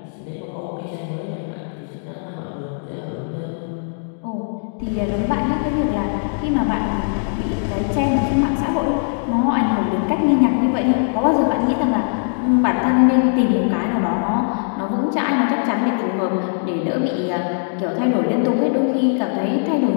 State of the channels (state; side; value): silent; right; digital silence